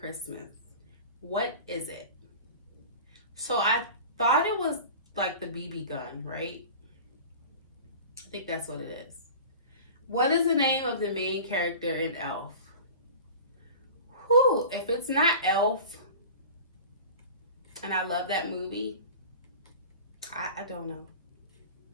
What is it? So I thought it was like the BB gun, right? I think that's what it is. What is the name of the main character in Elf? Whew, if it's not Elf, and I love that movie, I don't know.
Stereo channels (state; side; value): inverted; both; correlation -0.37